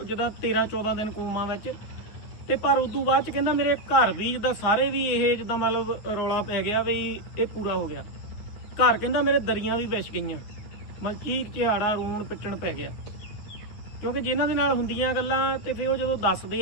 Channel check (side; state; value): right; late; 9.3 ms